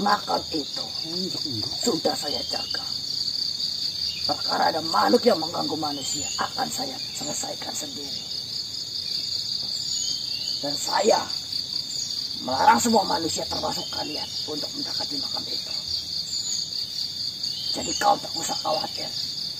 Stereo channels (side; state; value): both; identical; correlation 1.00